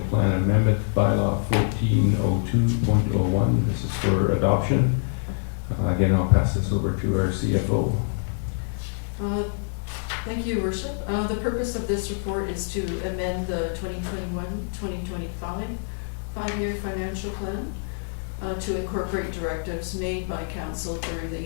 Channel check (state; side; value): silent; right; 61 dB below the other